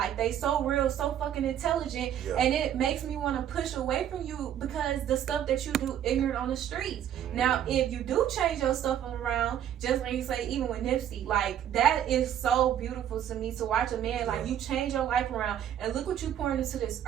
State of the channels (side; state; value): left; quieter; 10.3 dB